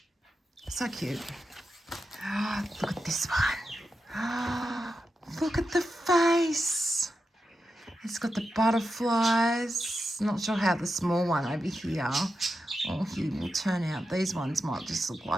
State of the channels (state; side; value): normal; both; correlation 0.89